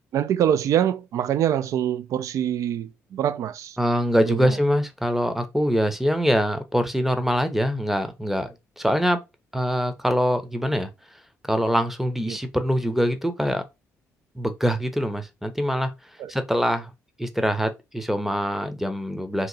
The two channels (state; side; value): normal; both; correlation 0.83